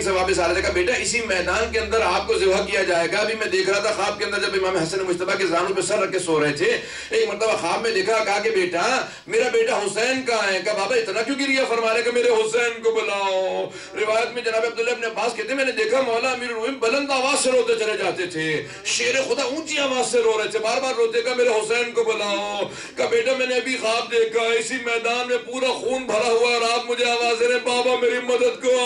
سے واپس آ رہے تھے, کہا بیٹا اسی میدان کے اندر آپ کو ذبح کیا جائے گا. ابھی میں دیکھ رہا تھا خواب کے اندر جب امام حسن مجتبیٰ کے زانوں پہ سر رکھ کے سو رہے تھے, ایک مرتبہ خواب میں دیکھا, کہا کہ بیٹا میرا بیٹا حسین کہاں ہے. کہا بابا اتنا کیوں گریہ فرما رہے کہ میرے حسین کو بلاؤ. روایت میں جناب عبداللہ ابن عباس کہتے ہیں میں نے دیکھا مولا امیر المومنین بلند آواز سے روتے چلے جاتے تھے, شیر خدا اونچی آواز سے رو رہے تھے, بار بار روتے, کہا میرے حسین کو بلاؤ. کہا بیٹا میں نے ابھی خواب دیکھا اسی میدان میں پورا خون بھرا ہوا اور آپ مجھے آواز دے رہے بابا میری مدد کو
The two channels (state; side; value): identical; both; correlation 1.00